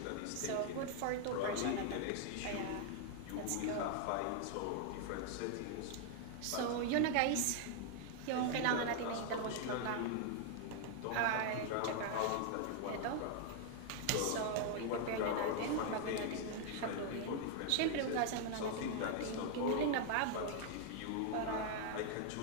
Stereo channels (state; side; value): different; both; correlation 0.00